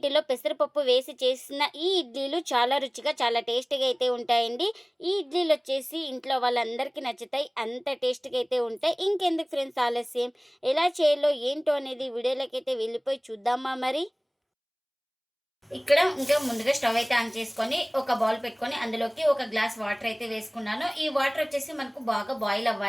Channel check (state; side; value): identical; both; correlation 1.00